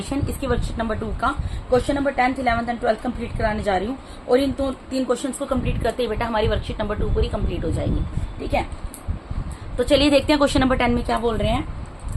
इसकी वर्कशीट नंबर 2 का question number 10th 11th and 12th complete कराने जा रही हूँ। और इन तीन क्वेश्चंस को कंप्लीट करते ही बेटा हमारी वर्कशीट नंबर 2 पूरी कंप्लीट हो जाएगी। ठीक है, तो चलिए देखते हैं क्वेश्चन नंबर 10 में क्या बोल रहे हैं।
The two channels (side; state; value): both; identical; correlation 1.00